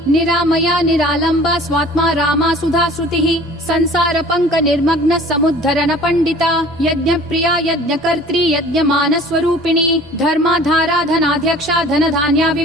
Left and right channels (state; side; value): normal; both; correlation 0.47